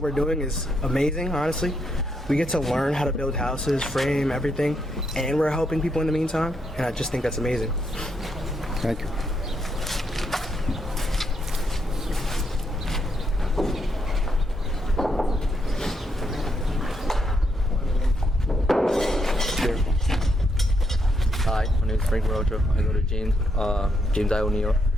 we're doing is amazing, honestly. We get to learn how to build houses, frame everything, and we're helping people in the meantime, and I just think that's amazing. Thank you. Hi, my name is Frank Morocho. I go to James Iowa, New York,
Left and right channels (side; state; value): both; normal; correlation 0.78